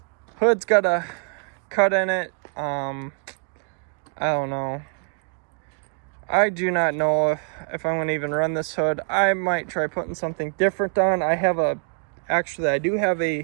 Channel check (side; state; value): left; quieter; 39.4 dB